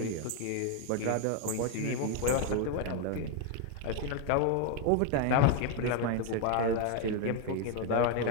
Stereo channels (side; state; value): both; different; correlation 0.00